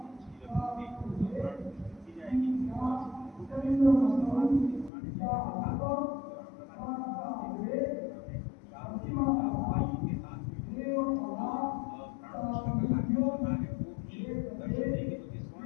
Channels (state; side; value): drops out; right; at 4.9 s